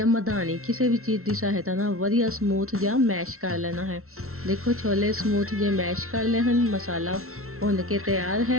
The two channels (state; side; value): late; left; 0.63 ms